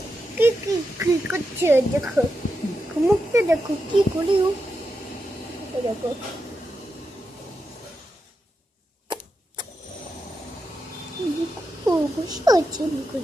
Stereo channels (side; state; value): both; normal; correlation 0.87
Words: কি কি কি করছে, দেখো মুখটা দেখো কি করি ও, দেখো বসে আছে,